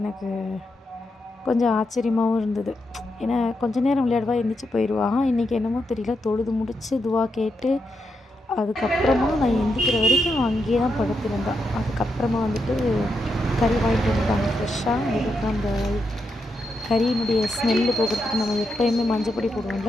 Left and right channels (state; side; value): normal; both; correlation 0.84